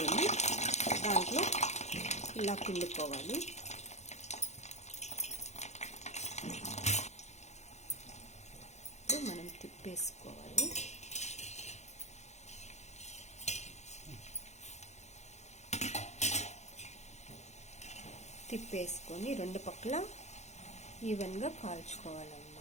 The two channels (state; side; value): late; right; 0.33 ms